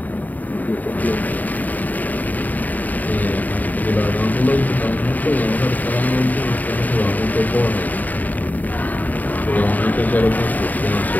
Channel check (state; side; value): late; right; 0.081 ms